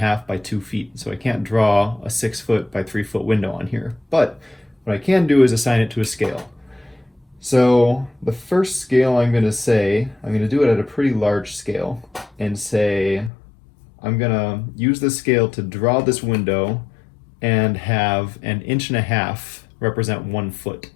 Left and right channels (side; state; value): right; drops out; at 13.3 s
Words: by 2 feet, so I can't draw a 6 foot by 3 foot window on here. But what I can do is assign it to a scale. So the first scale I'm going to do it at a pretty large scale and say I'm going to use this scale to draw this window and have 1.5 inches represent 1 foot.